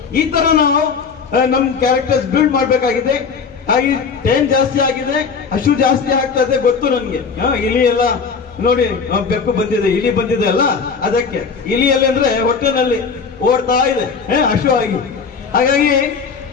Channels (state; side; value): quieter; right; 5.6 dB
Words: ಈ ತರ ನಾವು ನಮ್ ಕ್ಯಾರೆಕ್ಟರ್ಸ್ ಬಿಲ್ಡ್ ಮಾಡ್ಬೇಕಾಗಿದೆ. ಹಾಗೆ ಟೈಮ್ ಜಾಸ್ತಿ ಆಗಿದೆ, ಹಸು ಜಾಸ್ತಿ ಆಗ್ತಾ ಇದೆ ಗೊತ್ತು ನನ್ಗೆ. ಇಲಿ ಎಲ್ಲ ನೋಡಿ, ಬೆಕ್ಕು ಬಂದಿದೆ, ಇಲಿ ಬಂದಿದೆ ಅಲ್ಲ, ಅದಕ್ಕೆ ಇಲಿಯಲ್ಲಿ ಅಂದ್ರೆ ಹೊಟ್ಟೆನಲ್ಲಿ ಓಡ್ತಾ ಇದೆ ಹಸು ಆಗಿ. ಹಾಗಾಗಿ